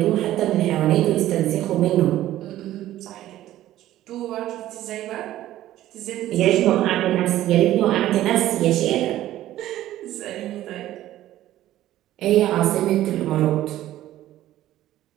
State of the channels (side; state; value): left; quieter; 13.9 dB